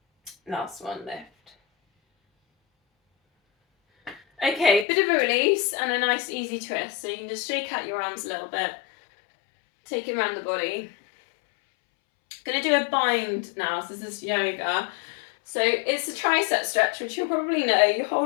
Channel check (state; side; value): drops out; right; at 4.9 s